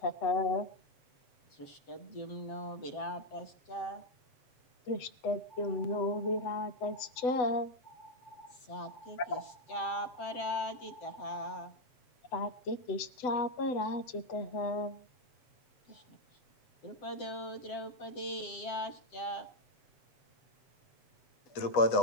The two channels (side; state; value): right; late; 7.6 ms